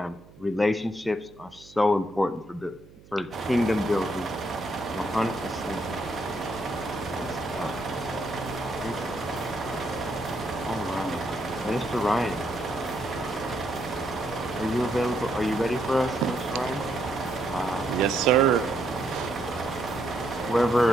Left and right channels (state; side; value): noise; right; hum, 23 dB below the sound